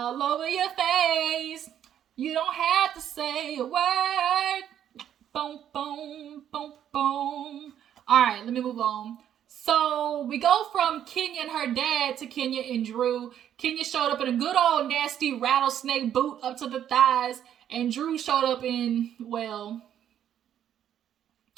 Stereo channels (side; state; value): left; quieter; 10.1 dB